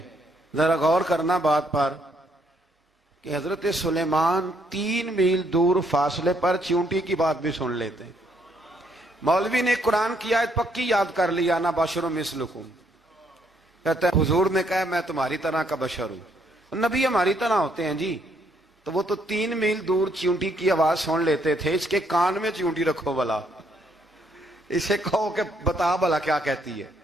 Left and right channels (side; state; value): both; normal; correlation 0.71